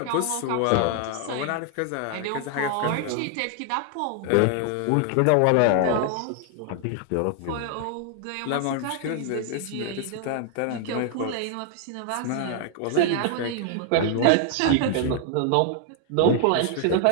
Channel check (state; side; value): different; both; correlation 0.00